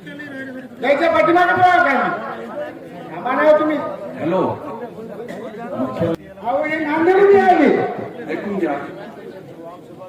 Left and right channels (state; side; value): identical; both; correlation 1.00